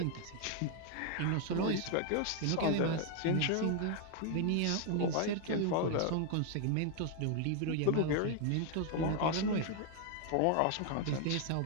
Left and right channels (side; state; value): both; different; correlation 0.00